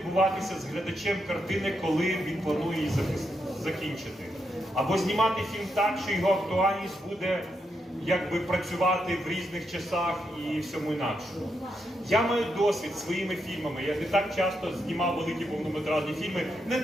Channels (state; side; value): normal; both; correlation 0.82